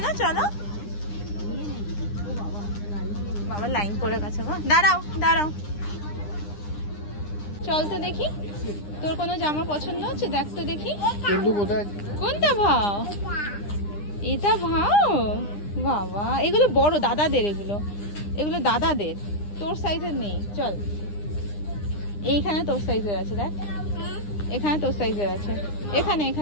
চলো। বাবা লাইন পড়ে গেছে গো, দাঁড়াও দাঁড়াও। চল তো দেখি, তোর কোনো জামা পছন্দ হচ্ছে? দেখ তো দেখি। কোনটা ভাও? এটা ভাও? বাবা এগুলো বড় দাদাদের, এগুলো দাদাদের, তোর সাইজের নেই। চল, এইখানে তোর সাইজের আছে, দেখ এখানে তোর সাইজের আছে,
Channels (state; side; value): late; right; 9.9 ms